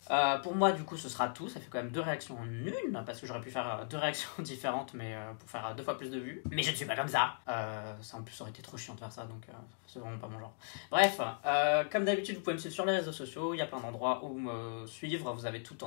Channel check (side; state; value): right; silent; digital silence